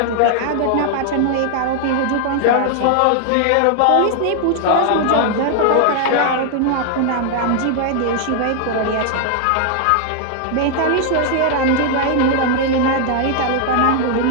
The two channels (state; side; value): different; both; correlation 0.00